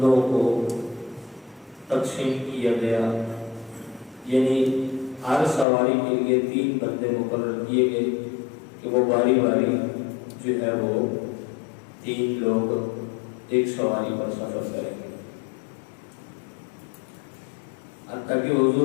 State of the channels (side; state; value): right; drops out; at 5.7 s